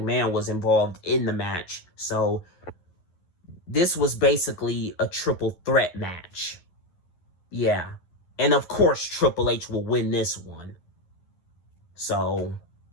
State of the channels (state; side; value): late; right; 11 ms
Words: was involved in the match. So this was basically a triple threat match. Yeah. And of course Triple H will win this one. So,